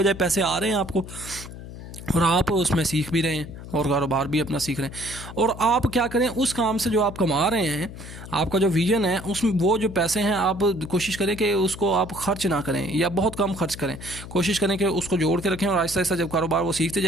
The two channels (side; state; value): left; noise; hum, 13 dB below the sound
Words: पैसे आ रहे हैं आपको, और आप उसमें सीख भी रहे हैं और कारोबार भी अपना सीख रहे हैं। और आप क्या करें, उस काम से जो आप कमा रहे हैं, आपका जो विजन है उसमें वो जो पैसे हैं आप कोशिश करें कि उसको आप खर्च ना करें या बहुत कम खर्च करें, कोशिश करें कि उसको जोड़ के रखें, और आहिस्ता आहिस्ता जब कारोबार वो सीखते